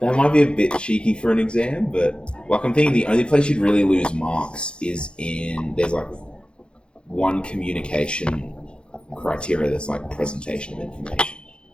might be a bit cheeky for an exam, but like I'm thinking the only place you'd really lose marks is there's like one communication criteria that's like presentation of information.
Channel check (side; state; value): right; late; 0.056 ms